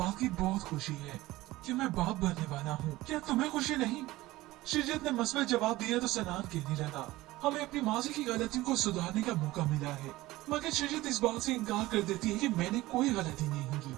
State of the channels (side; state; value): left; quieter; 18.2 dB